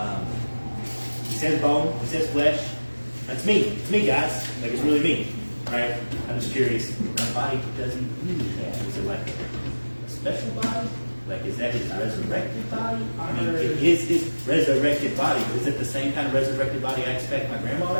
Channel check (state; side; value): inverted; both; correlation -1.00